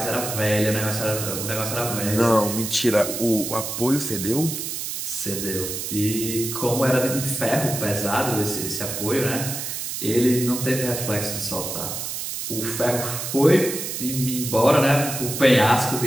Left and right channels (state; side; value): noise; right; hiss, 5 dB below the sound